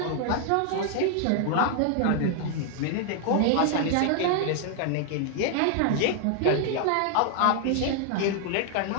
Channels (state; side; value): different; both; correlation 0.00